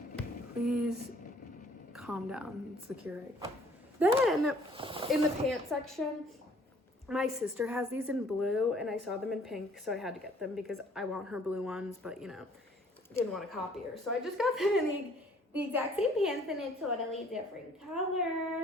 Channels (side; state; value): both; normal; correlation 0.58